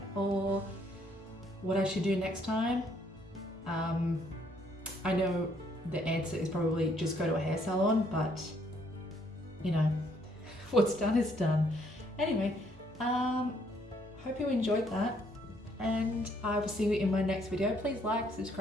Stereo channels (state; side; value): normal; both; correlation 0.68